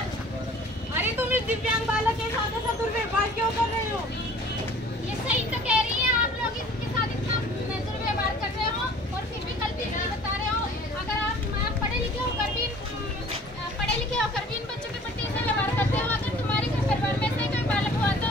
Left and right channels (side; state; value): both; normal; correlation 0.49